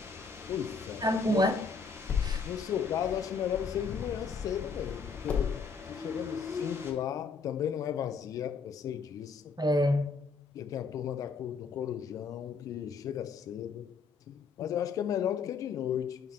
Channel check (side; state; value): right; quieter; 4.9 dB